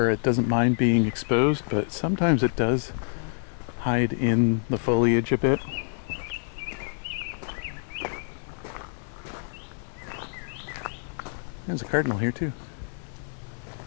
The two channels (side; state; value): right; silent; 60 dB below the other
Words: it doesn't mind being exposed, but sometimes it does hide in the foliage a bit. There's a Cardinal here too.